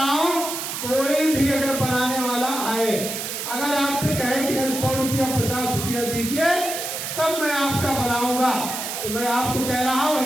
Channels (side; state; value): right; noise; hiss, 5 dB below the sound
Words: हूँ, कोई भी अगर बनाने वाला आए, अगर आपसे कहे कि 100 रुपया 50 रुपया दीजिए तब मैं आपका बनाऊंगा, तो मैं आपको कह रहा हूँ